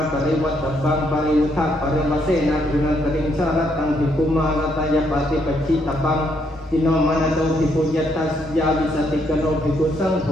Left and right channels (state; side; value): normal; both; correlation 0.74